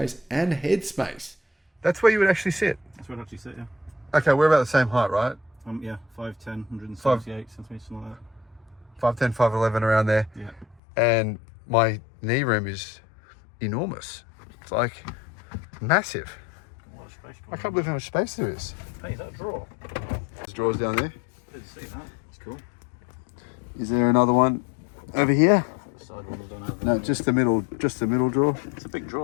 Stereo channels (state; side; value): drops out; right; at 10.8 s